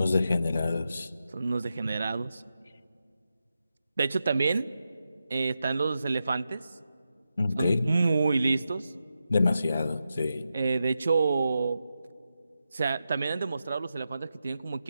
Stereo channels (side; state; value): both; inverted; correlation -0.88